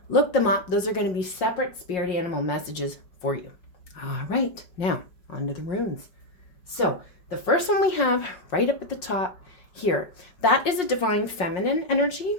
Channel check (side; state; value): right; late; 5.5 ms